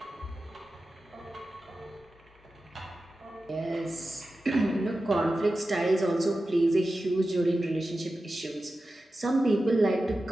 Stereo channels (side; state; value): both; normal; correlation 0.93